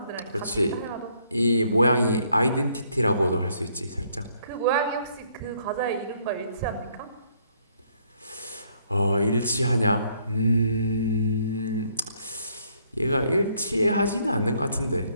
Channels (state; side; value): inverted; both; correlation -0.68